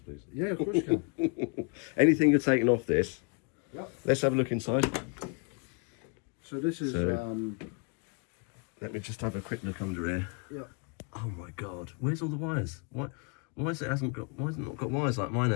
Yeah, of course you can. Anything you're taking off this? Yep. Let's have a look inside. So this is. Let me just have a quick look under here. Yep. Oh my God! Where's all the wires? Why has it not got wires like mine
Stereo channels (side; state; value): right; quieter; 36.5 dB